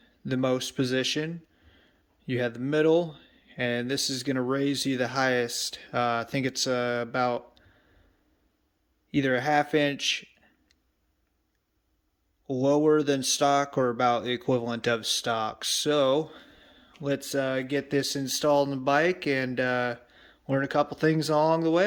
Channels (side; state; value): both; identical; correlation 1.00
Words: the most position. You have the middle, and this is going to raise you the highest. I think it's about either a ½ inch lower than stock or about the equivalent of stock. So let's get this installed in the bike and learn a couple things along the